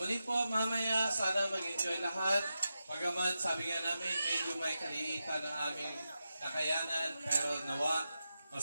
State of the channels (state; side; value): inverted; both; correlation -0.90